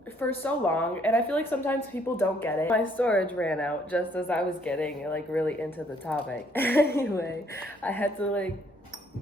for so long, and I feel like sometimes people don't get it. My storage ran out just as I was getting like really into the topic. Anyway, I had to like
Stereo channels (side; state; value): both; normal; correlation 0.65